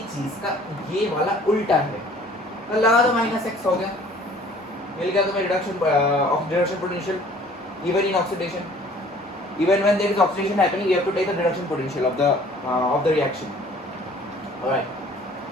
चीज का ये वाला उल्टा है, तो लगा दो माइनस एक्स हो गया, मिल गया तुम्हें reduction potential even in oxidation. Even when there is oxidation happening, you have to take the reduction potential of the reaction. Alright.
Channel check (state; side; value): normal; both; correlation 0.53